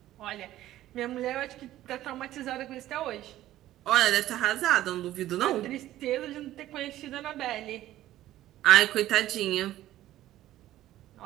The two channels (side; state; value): left; quieter; 14.1 dB